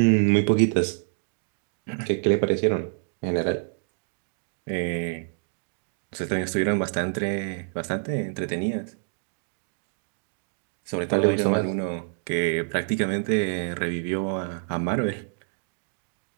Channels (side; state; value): left; silent; digital silence